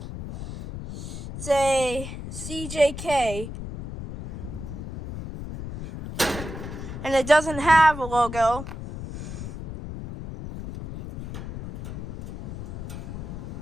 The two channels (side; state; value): left; noise; rumble, 9 dB below the sound